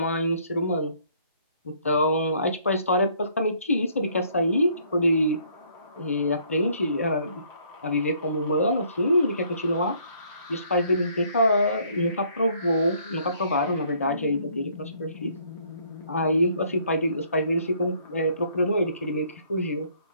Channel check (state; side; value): inverted; both; correlation -0.64